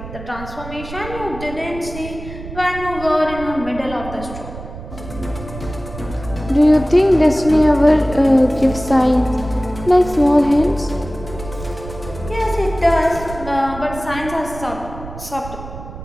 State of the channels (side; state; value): right; noise; rumble, 12 dB below the sound